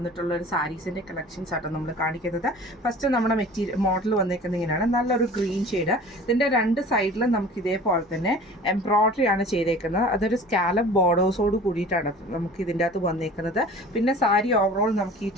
ഒരു സാരീസിൻ്റെ കളക്ഷൻസ് ആട്ടോ നമ്മൾ കാണിക്കുന്നത്. ഫസ്റ്റ് നമ്മുടെ മോഡൽ വന്നേക്കുന്നത് ഇങ്ങനെയാണ്, നല്ലൊരു ഗ്രീൻ ഷെയ്ഡ്. ഇതിൻ്റെ രണ്ട് സൈഡിലും നമുക്ക് ഇതേപോലെ തന്നെ എംബ്രോയ്ഡറി ആണ് ചെയ്തേക്കുന്നത്. അതൊരു സ്കാലപ്പ് ബോർഡേഴ്സോട് കൂടിയിട്ടാണ് നമുക്ക് ഇതിൻ്റെ അകത്ത് വന്നേക്കുന്നത്. പിന്നെ സാരി ഓവറോൾ നമുക്ക് ഈ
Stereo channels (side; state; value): both; normal; correlation 0.43